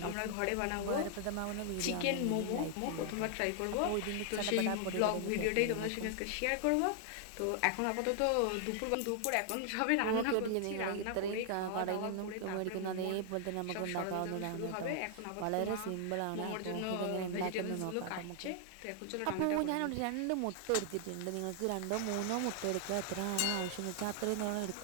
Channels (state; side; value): different; both; correlation 0.00